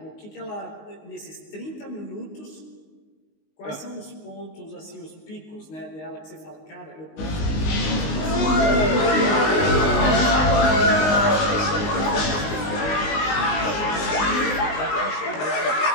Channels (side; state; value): right; late; 19 ms